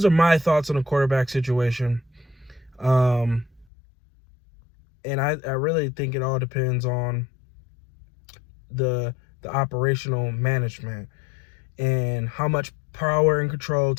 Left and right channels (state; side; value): drops out; right; at 3.7 s